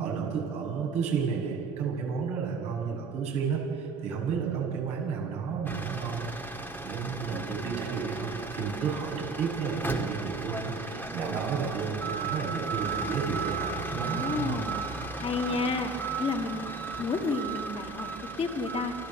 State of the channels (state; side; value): quieter; left; 3.1 dB